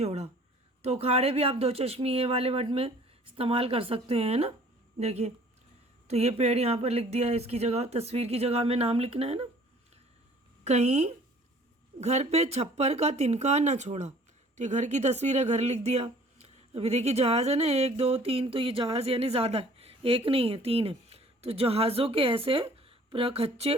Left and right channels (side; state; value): both; normal; correlation 0.53